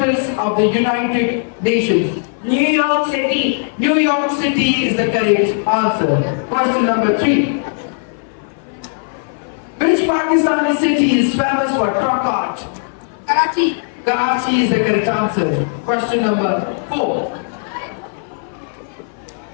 of the United Nations? New York City. New York City is the correct answer. Question number 3. Which Pakistani city is famous for truck art? Karachi. Karachi is the correct answer. Question number 4.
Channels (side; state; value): right; silent; 56 dB below the other